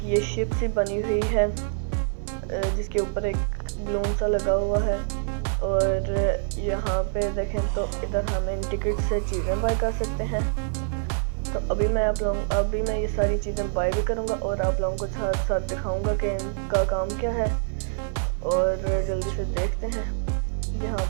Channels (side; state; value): left; silent; digital silence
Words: ये शिप सी बनी हुई है जिसके ऊपर एक बलून सा लगा हुआ है, और यहाँ पे देखें तो इधर हम इन टिकट से चीज़ें बाय कर सकते हैं। तो अभी मैं ये सारी चीज़ें बाय भी करूँगा और आप लोगों को साथ साथ दिखाऊंगा कि इनका काम क्या है। और जल्दी से देखते हैं यहाँ